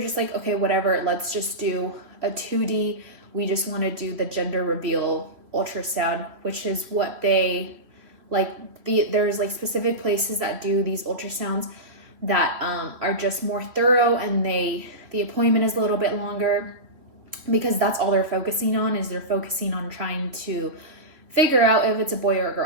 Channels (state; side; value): late; left; 3.0 ms